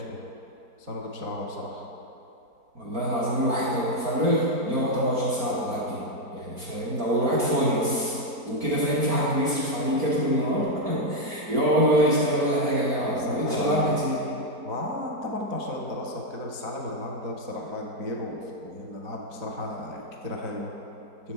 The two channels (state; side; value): late; left; 4.4 ms